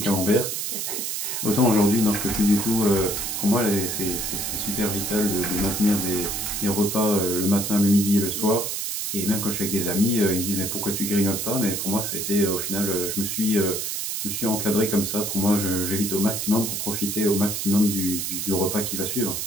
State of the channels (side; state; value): right; noise; hiss, 3 dB below the sound